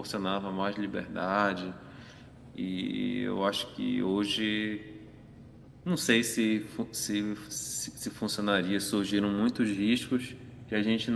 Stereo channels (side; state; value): both; identical; correlation 1.00